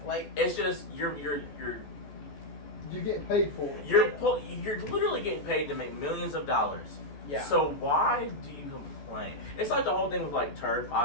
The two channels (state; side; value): late; right; 14 ms